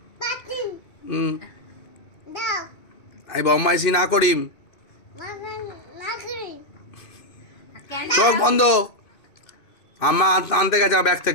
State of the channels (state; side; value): late; right; 2.6 ms